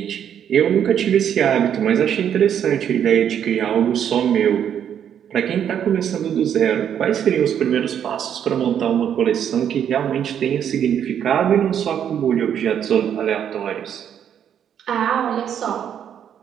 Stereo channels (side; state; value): left; quieter; 9.0 dB